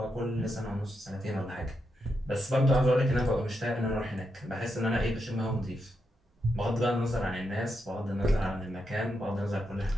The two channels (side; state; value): both; normal; correlation 0.84